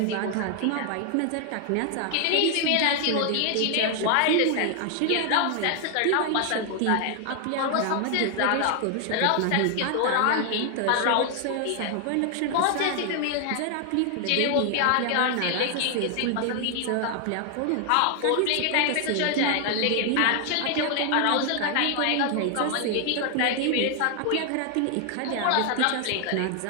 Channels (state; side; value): different; both; correlation 0.00